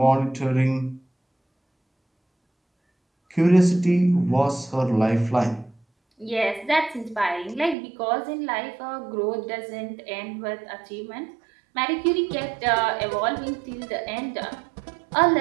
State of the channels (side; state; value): left; drops out; at 7.8 s